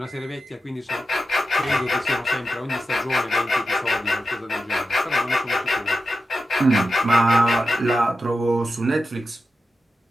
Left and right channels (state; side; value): normal; both; correlation 0.90